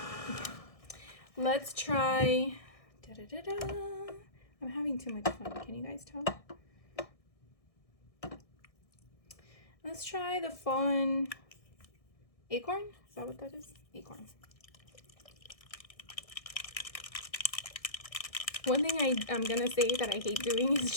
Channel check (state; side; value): late; right; 1.6 ms